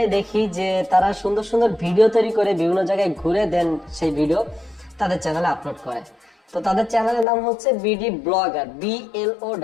দেখি যে তারা সুন্দর সুন্দর ভিডিও তৈরি করে বিভিন্ন জায়গায় ঘুরে দেন সেই ভিডিও তাদের চ্যানেলে আপলোড করে। তো তাদের চ্যানেলের নাম হচ্ছে বিডি ব্লগার,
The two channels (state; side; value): drops out; right; at 7.2 s